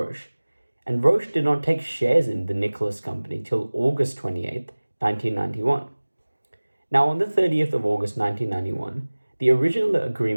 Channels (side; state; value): both; inverted; correlation -1.00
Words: And Roche did not take shares in the Nicholas company till August 28th, 1991. Now, on the 30th of August 1991, the original